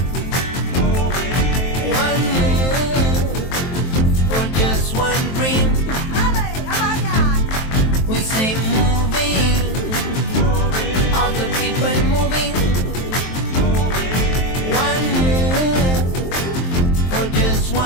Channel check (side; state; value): right; late; 23 ms